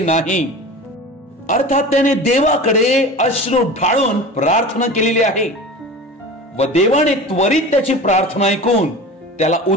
अर्थात त्याने देवाकडे अश्रू ढाळून प्रार्थना केलेली आहे व देवाने त्वरित त्याची प्रार्थना ऐकून त्याला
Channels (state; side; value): normal; both; correlation 0.35